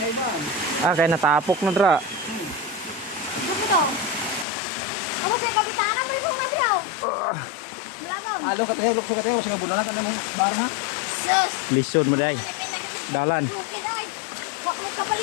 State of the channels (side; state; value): right; drops out; at 4.5 s